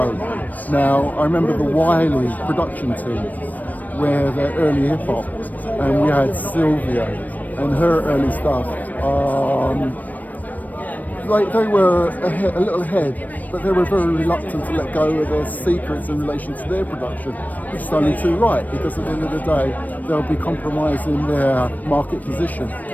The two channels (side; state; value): right; late; 0.081 ms